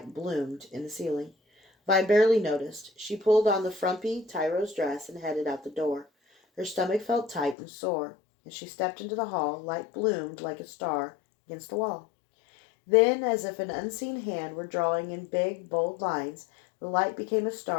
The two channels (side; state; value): right; drops out; at 7.6 s